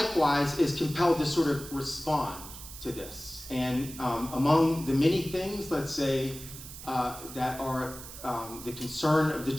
is compelled to sort of respond to this. And among the many things, let's say, that are the concern of the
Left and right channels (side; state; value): right; noise; hiss, 13 dB below the sound